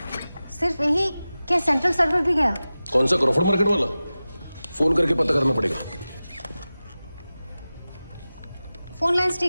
सिर्फ यही क्या सेंट्रल सर्वर भी गया? कौन सा, क्रॉफर्ड मार्केट वाला? फोन करके पता करना पड़ेगा। फोन लाइंस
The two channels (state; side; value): inverted; both; correlation -0.96